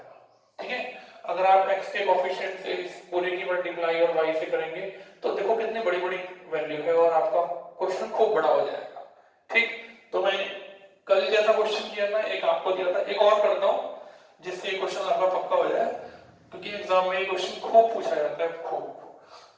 ठीक है, अगर आप x के कोएफिशिएंट से इस पूरे की मल्टीप्लाई और y से करेंगे तो देखो कितनी बड़ी बड़ी वैल्यू है और आपका क्वेश्चन खूब बड़ा हो जाएगा। ठीक, तो मैं कल जैसा क्वेश्चन किया था, एक आपको दिया था, एक और करता हूं जिससे क्वेश्चन आपका पक्का हो जाए, क्योंकि एग्जाम में ये क्वेश्चन खूब पूछा जाता है, खूब।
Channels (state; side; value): identical; both; correlation 1.00